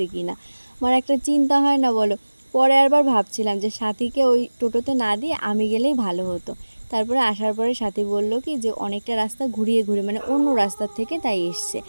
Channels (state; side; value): inverted; both; correlation -1.00